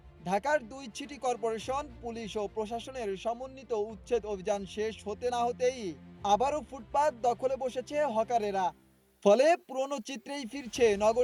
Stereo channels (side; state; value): both; identical; correlation 1.00